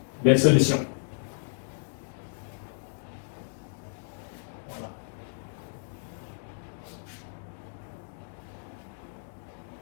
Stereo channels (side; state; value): right; silent; digital silence